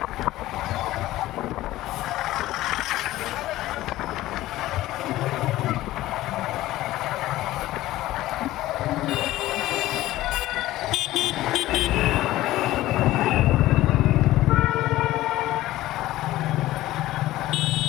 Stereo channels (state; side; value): quieter; right; 16.0 dB